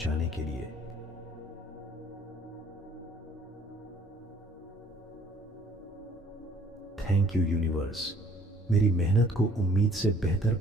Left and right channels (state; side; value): normal; both; correlation 0.57